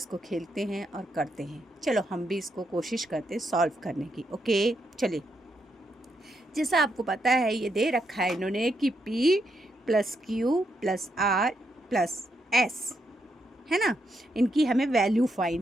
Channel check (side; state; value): both; normal; correlation 0.79